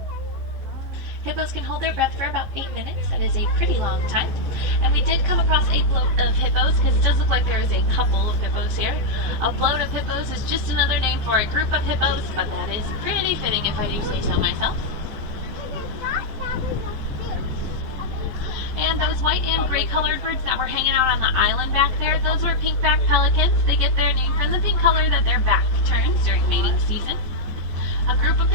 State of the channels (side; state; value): left; late; 15 ms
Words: Hippos can hold their breath for about 8 minutes. That is a pretty long time. And we did come across a bloat of hippos, because it does look like there is a couple of hippos here. A bloat of hippos is just another name for a group of hippos, but that is pretty fitting if I do say so myself. And those white and gray colored birds that were hanging out on the island back there, those were pink-back pelicans. They get their name from the pink color that their back turns during mating season. A group of